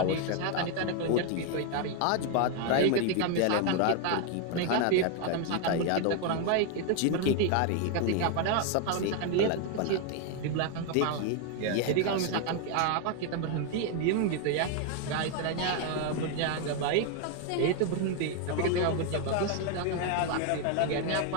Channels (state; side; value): different; both; correlation 0.01